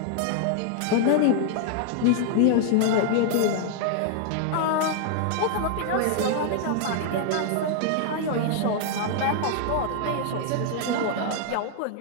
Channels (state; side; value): different; both; correlation 0.00